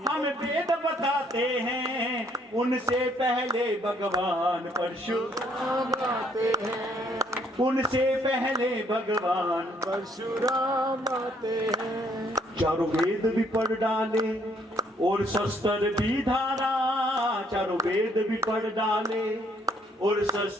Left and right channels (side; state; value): both; normal; correlation 0.67